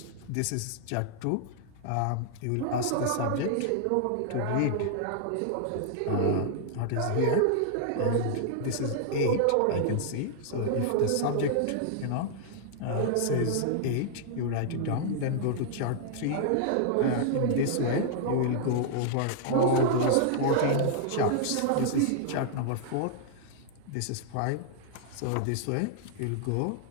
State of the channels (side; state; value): both; different; correlation -0.01